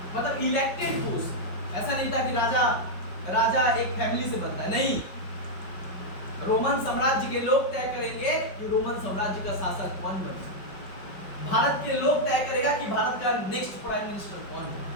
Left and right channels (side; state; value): right; late; 5.2 ms